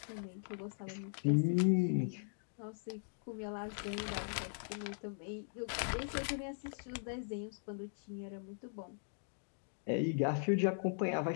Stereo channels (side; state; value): right; silent; digital silence